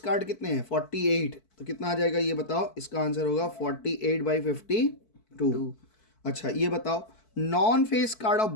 कितने हैं? 48। तो कितना आ जाएगा ये बताओ? इसका आंसर होगा 48/52। अच्छा, ये बताओ, non face card of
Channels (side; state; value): right; late; 4.6 ms